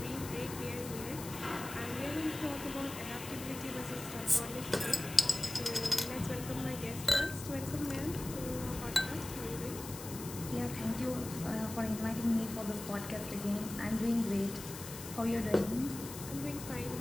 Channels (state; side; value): noise; left; hiss, 11 dB below the sound